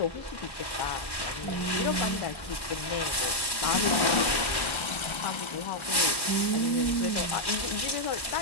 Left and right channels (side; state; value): right; late; 1.1 ms